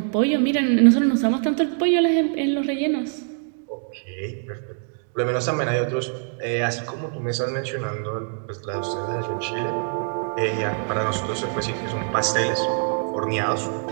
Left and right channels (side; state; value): left; silent; 58 dB below the other